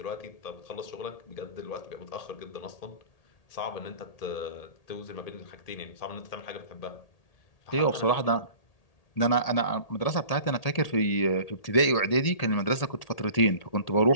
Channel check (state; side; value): late; right; 1.8 ms